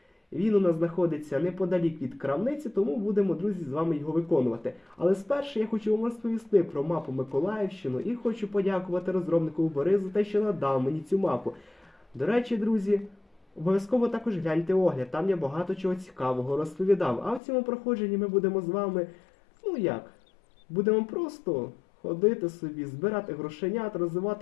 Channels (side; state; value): right; drops out; at 17.4 s